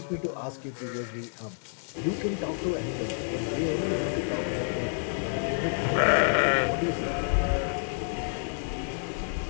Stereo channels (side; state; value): right; silent; 59 dB below the other